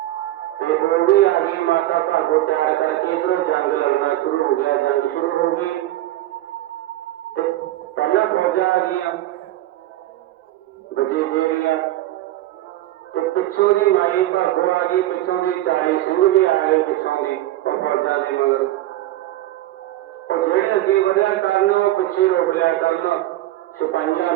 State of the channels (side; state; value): left; quieter; 15.2 dB